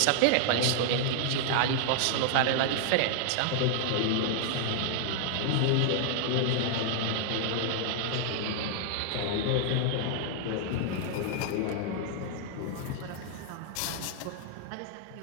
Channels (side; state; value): both; different; correlation -0.01